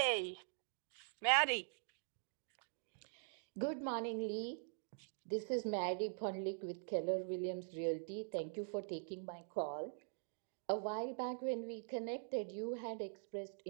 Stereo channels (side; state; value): left; silent; digital silence